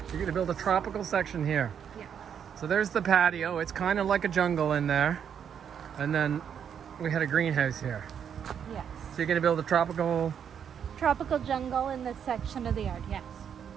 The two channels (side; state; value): left; quieter; 8.1 dB